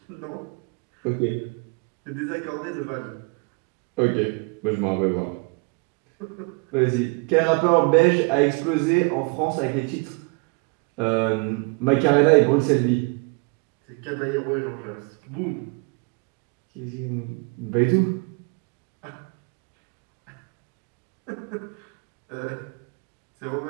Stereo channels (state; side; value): quieter; left; 31.1 dB